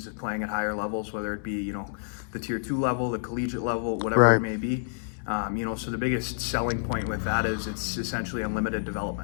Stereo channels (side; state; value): right; silent; 59 dB below the other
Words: of playing at higher levels, whether it be the tier 2 level, the collegiate level, whatever right. it may be. So the biggest selling point with that is it's essentially unlimited